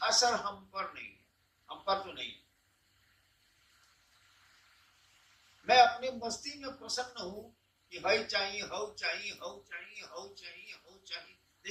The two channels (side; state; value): both; identical; correlation 1.00